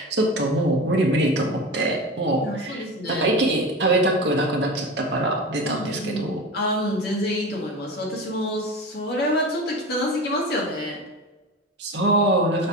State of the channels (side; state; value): both; normal; correlation 0.29